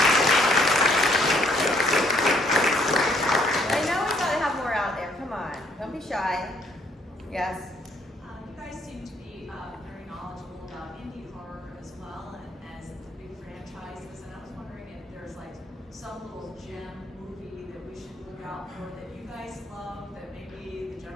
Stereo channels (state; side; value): normal; both; correlation 0.66